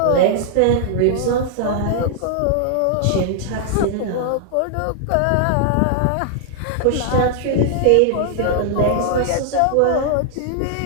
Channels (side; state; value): both; different; correlation -0.01